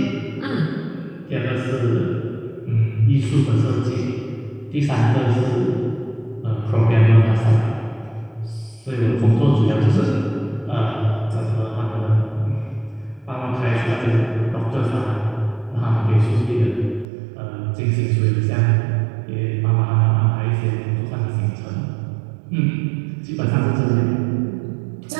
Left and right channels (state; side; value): drops out; left; at 17.1 s